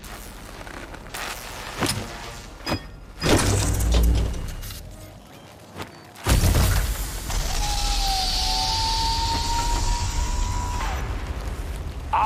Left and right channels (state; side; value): identical; both; correlation 1.00